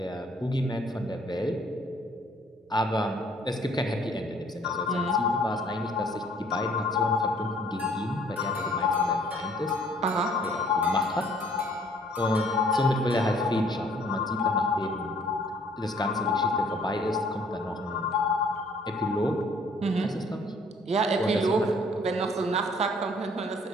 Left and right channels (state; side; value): normal; both; correlation 0.59